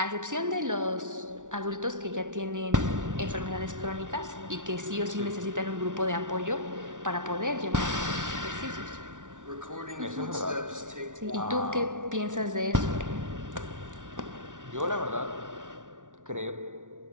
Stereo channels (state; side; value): late; left; 0.87 ms